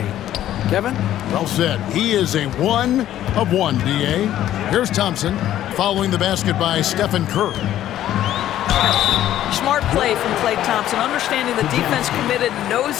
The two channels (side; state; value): right; quieter; 12.4 dB